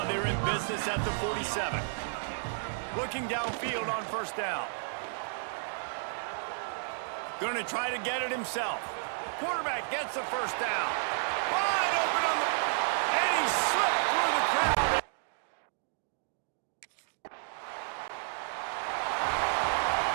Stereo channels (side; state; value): left; silent; digital silence